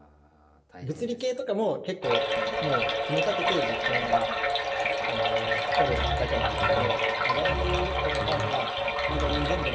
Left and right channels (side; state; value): both; identical; correlation 1.00